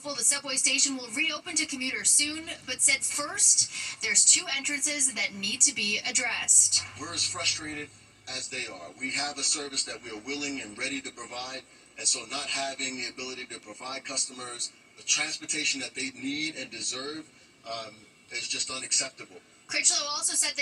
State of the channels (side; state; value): both; identical; correlation 1.00